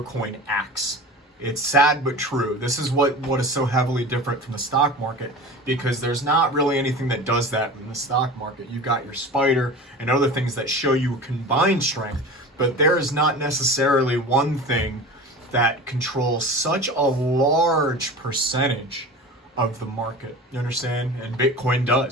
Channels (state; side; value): normal; both; correlation 0.34